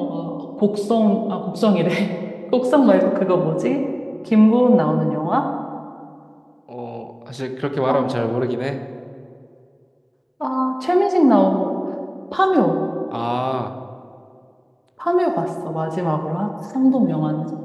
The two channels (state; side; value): identical; both; correlation 1.00